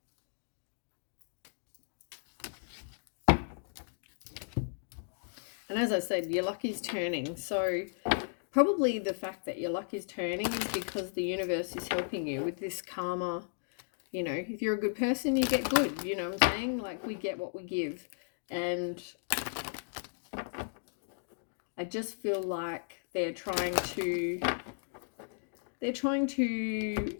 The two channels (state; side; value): silent; right; digital silence